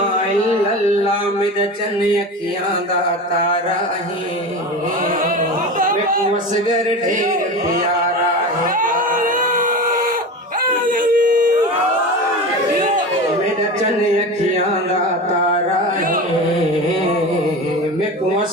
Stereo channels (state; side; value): normal; both; correlation 0.28